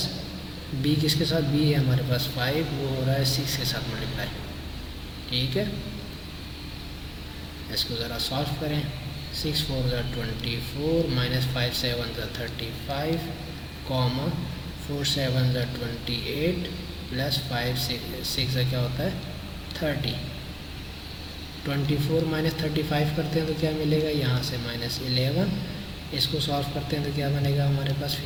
B किसके साथ, B है हमारे पास 5, वो हो रहा है 6 के साथ मल्टीप्लाई, ठीक है। इसको ज़रा सॉल्व करें, 6 4 = 24, -5 7 = 35, कॉमा 4 7 = 28, + 5 6 क्या होता है 30। 24 - 35 करते हैं तो क्या मिलेगा, यहाँ से -11, इसको सॉल्व करते हैं तो क्या बनेगा हमारे पास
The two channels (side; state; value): both; identical; correlation 1.00